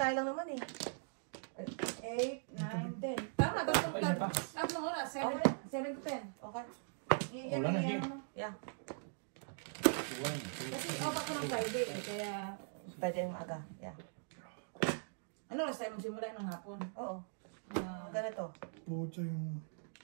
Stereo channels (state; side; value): silent; left; digital silence